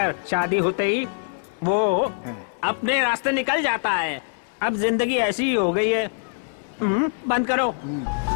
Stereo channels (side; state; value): right; silent; 63 dB below the other